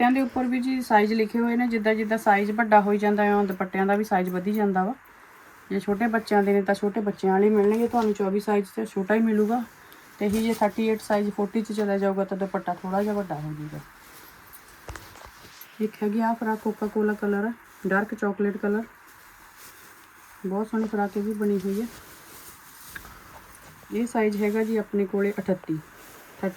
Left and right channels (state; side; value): identical; both; correlation 1.00